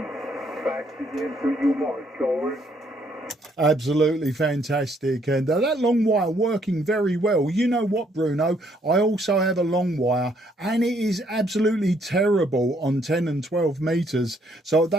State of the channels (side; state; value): both; normal; correlation 0.69